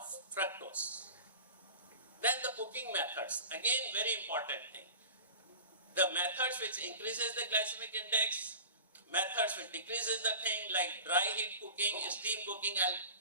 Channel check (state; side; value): inverted; both; correlation -0.37